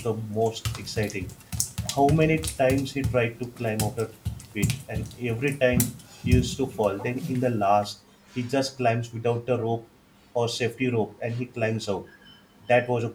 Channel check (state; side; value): identical; both; correlation 1.00